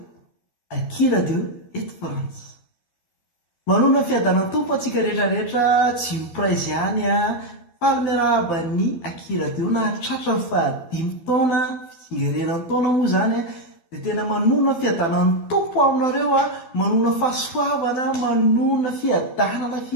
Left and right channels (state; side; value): late; right; 12 ms